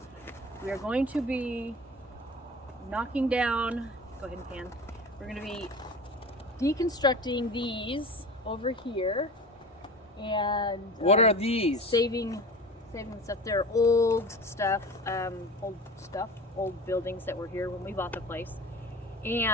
we are going to be knocking down, go ahead and pan, we're going to be deconstructing these over here, and what are these? Saving stuff. They're old buildings that were here when we bought the place.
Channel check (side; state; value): both; normal; correlation 0.36